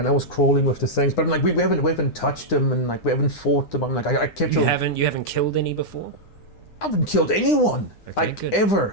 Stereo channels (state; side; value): late; right; 9.8 ms